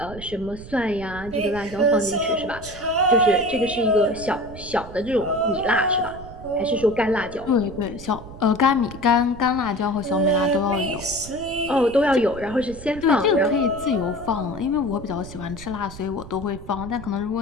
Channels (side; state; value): right; noise; rumble, 15 dB below the sound